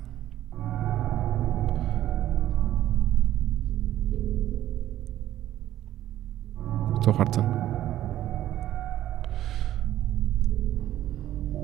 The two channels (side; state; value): left; quieter; 13.0 dB